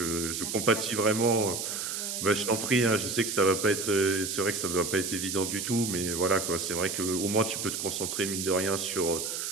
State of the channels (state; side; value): noise; right; hiss, 4 dB below the sound